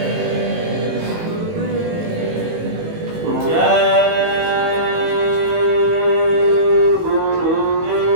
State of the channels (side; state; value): left; late; 18 ms